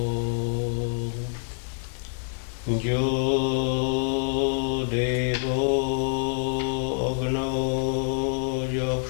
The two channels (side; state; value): right; silent; digital silence